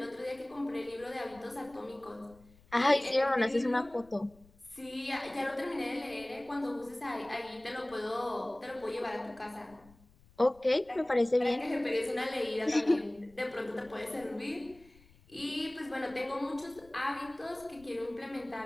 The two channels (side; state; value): left; noise; rumble, 27 dB below the sound